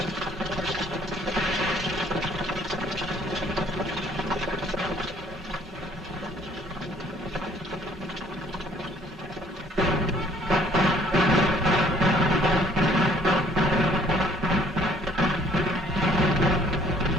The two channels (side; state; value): both; normal; correlation 0.59